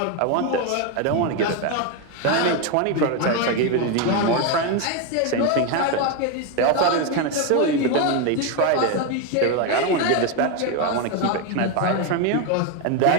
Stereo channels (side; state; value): both; different; correlation 0.02